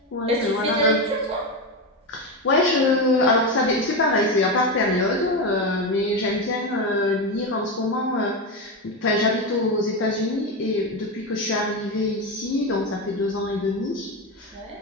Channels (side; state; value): both; normal; correlation 0.15